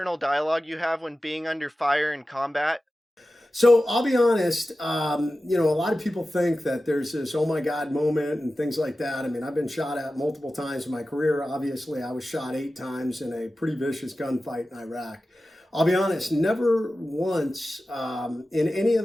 dialogue you have when being under fire in combat? So I'll be honest, a lot of people think that there's this oh my God moment and things like that. I mean, I've been shot at multiple times in my career. Obviously, I was shot 8 times in a pretty vicious gunfight in Iraq. I'll be honest, never once in any of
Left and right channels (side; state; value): both; normal; correlation 0.94